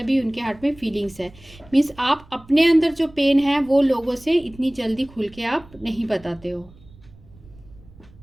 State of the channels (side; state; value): right; noise; rumble, 23 dB below the sound